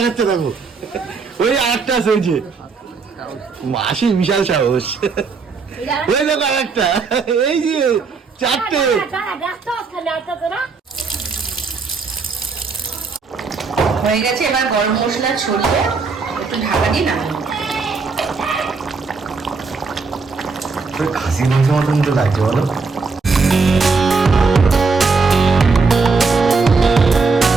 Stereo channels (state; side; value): quieter; left; 4.5 dB